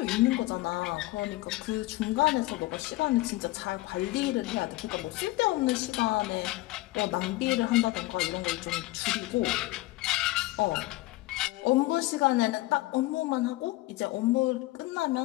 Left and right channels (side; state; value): right; quieter; 19.4 dB